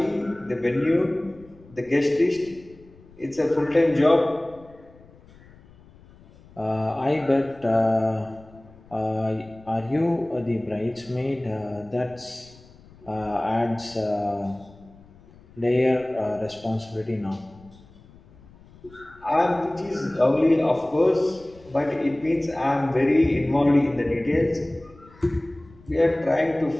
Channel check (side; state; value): left; noise; rumble, 24 dB below the sound